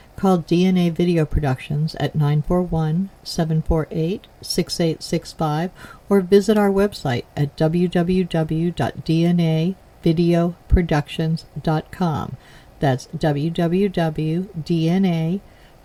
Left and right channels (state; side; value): identical; both; correlation 1.00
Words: Call DNA Video Productions at 941-748-6865 or visit our website at www.dnavideoproductions.com. That's